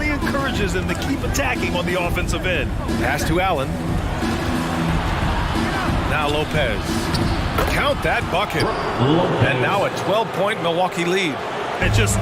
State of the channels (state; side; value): identical; both; correlation 1.00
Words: encourages them to keep attacking on the offensive end. Pass to Allen. Now Lopez. Count that bucket. And now a 12-point Milwaukee lead. And just